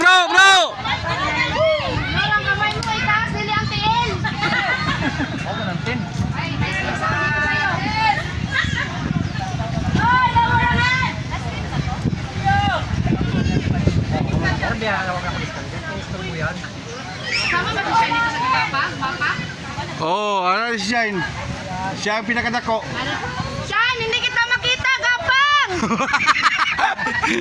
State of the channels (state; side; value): identical; both; correlation 1.00